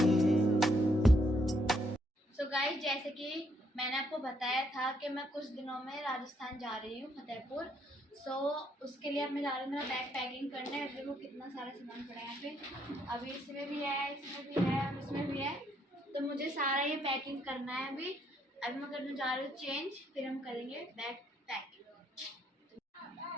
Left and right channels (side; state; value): both; normal; correlation 0.72